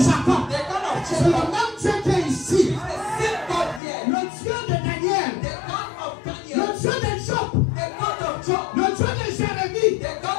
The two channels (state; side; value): drops out; right; at 3.8 s